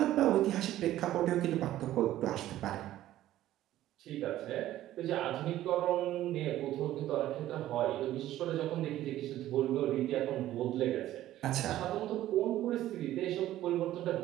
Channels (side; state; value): left; quieter; 13.8 dB